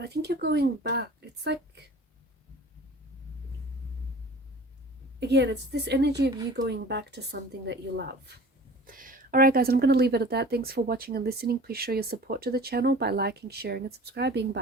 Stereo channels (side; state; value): both; normal; correlation 0.43